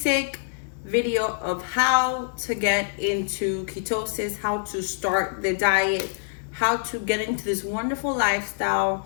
video of how to get into ketosis, how to start the diet, how to get into this wonderful lifestyle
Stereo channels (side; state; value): right; silent; digital silence